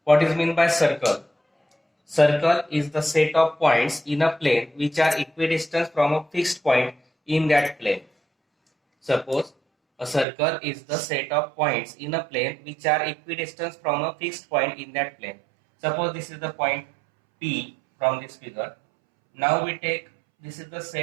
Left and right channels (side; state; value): left; drops out; at 10.2 s